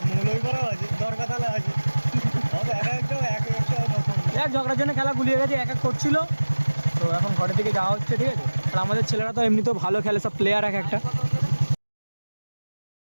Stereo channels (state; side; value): inverted; both; correlation -1.00